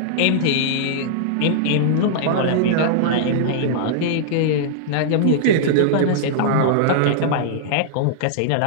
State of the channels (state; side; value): different; both; correlation -0.01